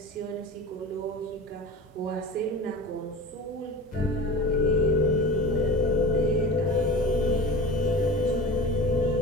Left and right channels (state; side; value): normal; both; correlation 0.33